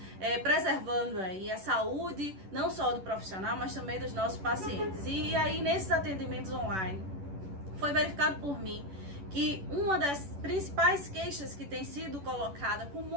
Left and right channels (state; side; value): late; left; 11 ms